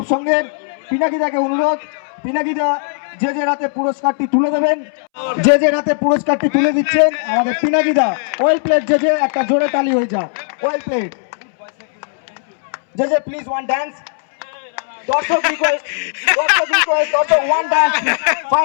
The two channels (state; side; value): silent; right; 67 dB below the other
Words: সংঘের। পিনাকিদাকে অনুরোধ, পিনাকিদা যে রাতে পুরস্কারটি তুলে দেবেন। যে রাতে পুরস্কারটি তুলে দিচ্ছেন আমাদের পিনাকিদা। ওয়েল প্লেট যে একটা জোরে তালি হয়ে যাক। ওয়েল প্লেট যে প্লিজ ওয়ান ডান্স। দর্শক রিকোয়েস্ট, দর্শক ওয়ান ডান্স